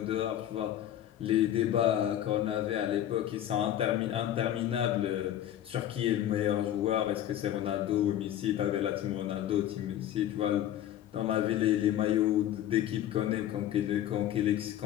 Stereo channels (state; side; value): quieter; right; 11.7 dB